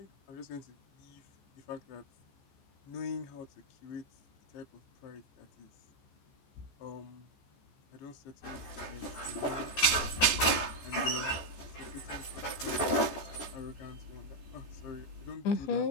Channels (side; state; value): right; late; 14 ms